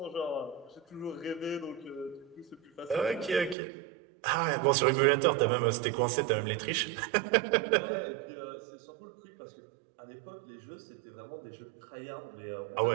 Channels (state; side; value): drops out; left; at 3.6 s